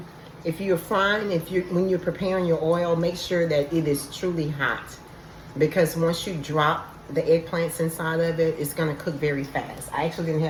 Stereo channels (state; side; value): identical; both; correlation 1.00